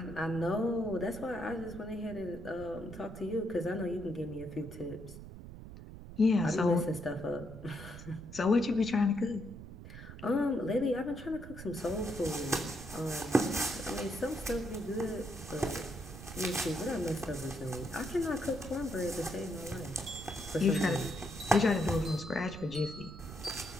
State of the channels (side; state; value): right; noise; rumble, 13 dB below the sound